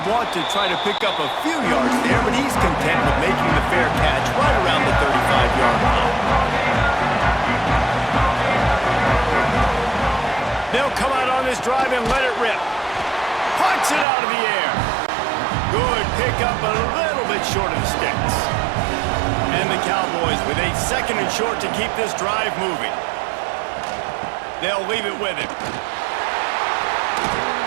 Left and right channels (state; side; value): drops out; left; at 14.1 s